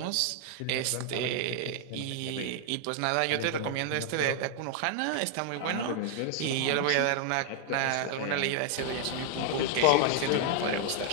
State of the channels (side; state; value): both; different; correlation 0.00